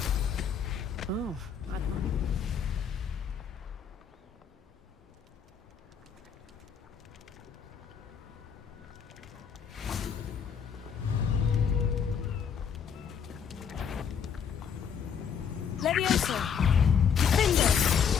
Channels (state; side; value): quieter; right; 7.2 dB